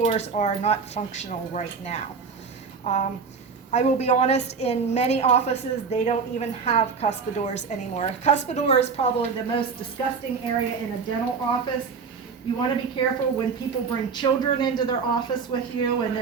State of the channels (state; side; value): quieter; left; 5.4 dB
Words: are not functional right now. I will be honest, in many offices, they don't even have cuspidors anymore. A cuspidor is probably the most disgusting area in a dental office. You want to be careful when people bring children into their office with you and